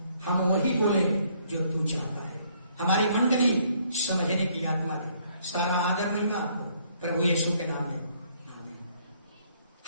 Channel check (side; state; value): both; inverted; correlation -0.66